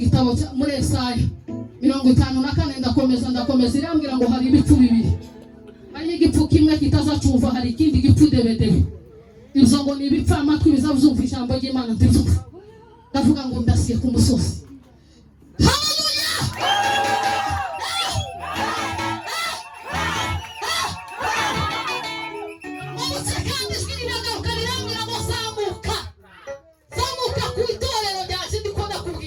muri Yesaya 54 ndakomeza irambwira ngo hari ibipfu bibiri hari igipfu kimwe kitazacumva hari ikindi gipfu debedebe ibyo ngo ni ibipfa amatwi bizavuzumva ijambo ry'Imana ndivuga ndavuga ngo ndasiye ku musozi haleluya kandi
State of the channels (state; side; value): identical; both; correlation 1.00